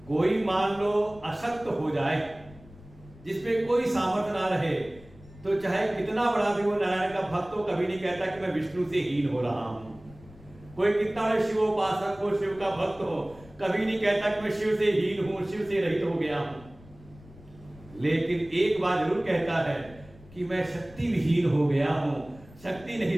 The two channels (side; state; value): left; noise; rumble, 22 dB below the sound